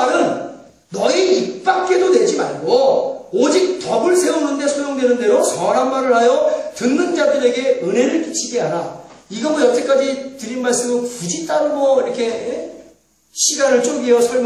너희 입 밖에도 내지 말고 오직 덕을 세우는 데 소용되는 대로 선한 말을 하여 듣는 자들에게 은혜를 끼치게 하라. 이거 뭐 여태까지 드린 말씀은 굳이 따로 뭐 이렇게 시간을 쪼개어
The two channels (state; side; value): identical; both; correlation 1.00